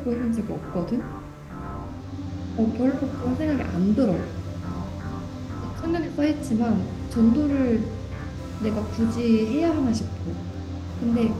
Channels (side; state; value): both; identical; correlation 1.00